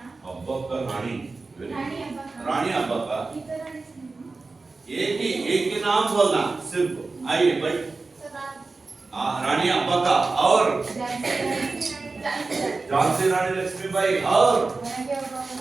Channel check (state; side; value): quieter; left; 3.8 dB